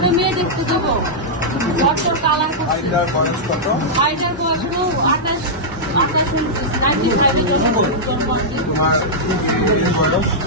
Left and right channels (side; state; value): both; normal; correlation -0.09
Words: মেয়ে দেখতে যাবো ঘরটার কালার করছে আইটার বয়স